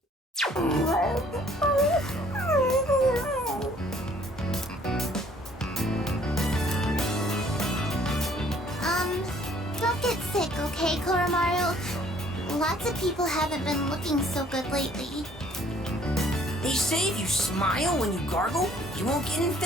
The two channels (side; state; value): both; normal; correlation 0.59